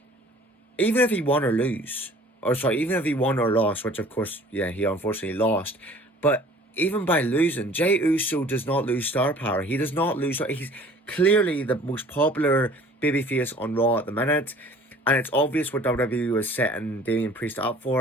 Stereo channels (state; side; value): normal; both; correlation 0.50